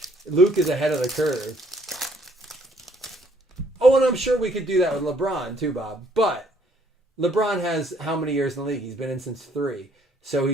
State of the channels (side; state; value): both; normal; correlation 0.64